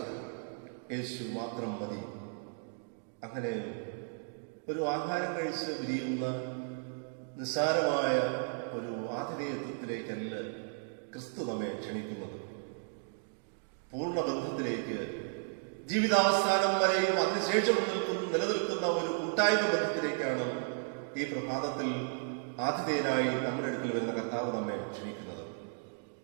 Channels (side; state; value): left; silent; 55 dB below the other